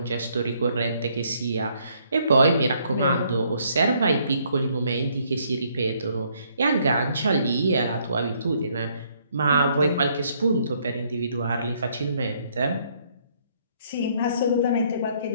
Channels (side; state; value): both; inverted; correlation -0.68